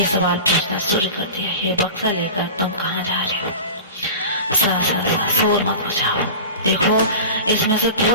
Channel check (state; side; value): inverted; both; correlation -0.33